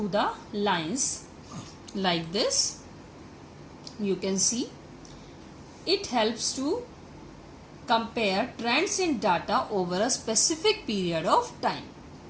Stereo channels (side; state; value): both; identical; correlation 1.00